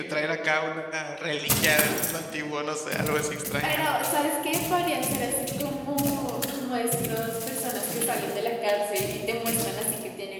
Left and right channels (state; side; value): identical; both; correlation 1.00